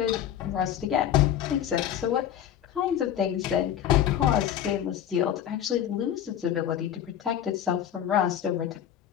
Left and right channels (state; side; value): quieter; right; 10.4 dB